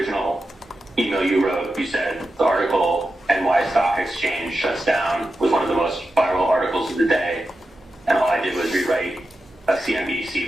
email you wrote, you said the article "NY Stock Exchange Shuts Down" was one of the most viral articles of the day, and all I did was rewrite a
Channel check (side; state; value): both; normal; correlation 0.90